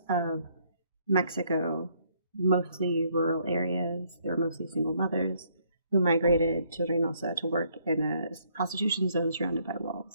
of Mexico, mostly rural areas. They were mostly single mothers who migrated to Reynosa to work in a prostitution zone surrounded by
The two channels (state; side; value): inverted; both; correlation -0.68